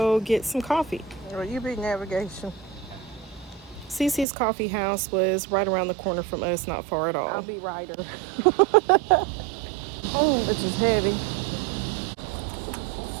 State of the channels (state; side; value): drops out; left; at 4.2 s